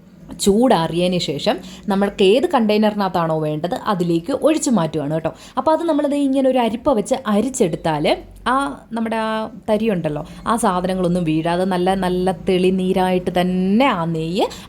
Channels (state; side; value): identical; both; correlation 1.00